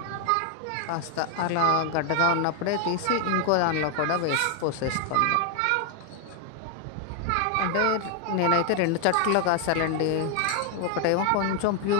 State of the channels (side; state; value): both; different; correlation 0.01